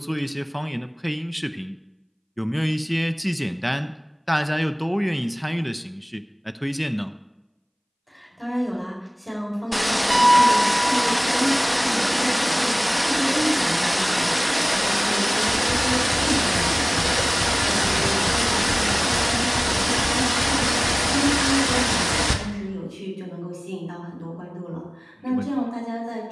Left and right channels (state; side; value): identical; both; correlation 1.00